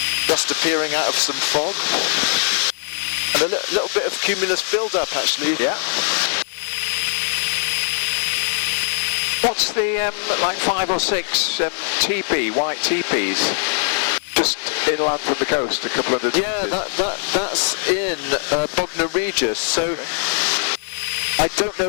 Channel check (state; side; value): silent; right; digital silence